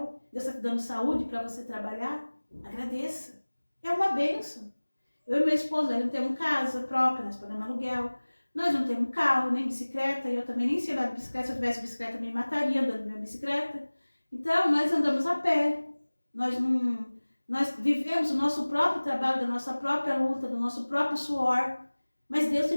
Deus está te dando saúde para você trabalhar? Agradeça, é uma bênção. Eu e meu esposo, nós não temos casa própria, nós pagamos aluguel. Nós não temos carro, nem bicicleta. E eu também nem sei andar de bicicleta. Se eu tivesse bicicleta, eu me mataria andando de minha bicicleta. Então, nós andamos a pé. Nós vivemos o nosso próprio trabalho, da nossa própria luta, do nosso próprio suor. Mas Deus tem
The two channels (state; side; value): inverted; both; correlation -1.00